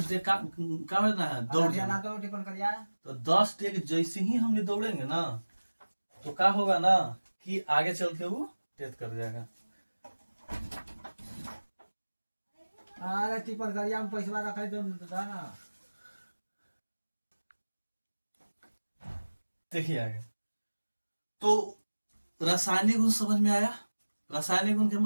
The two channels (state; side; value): inverted; both; correlation -1.00